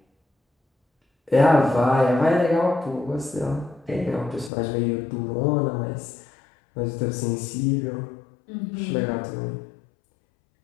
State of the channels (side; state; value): right; drops out; at 4.5 s